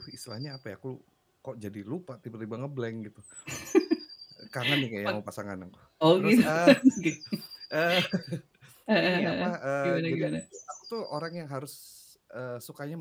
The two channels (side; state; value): both; identical; correlation 1.00